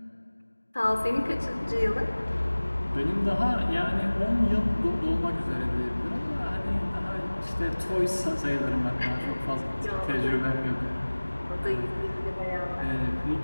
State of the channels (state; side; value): inverted; both; correlation -1.00